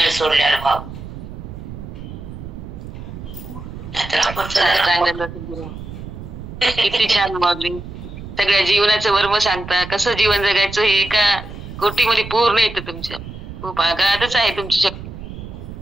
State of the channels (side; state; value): right; noise; rumble, 11 dB below the sound